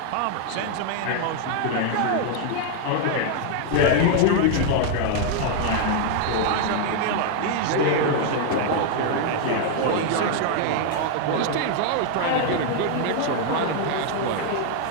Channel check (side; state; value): both; different; correlation 0.00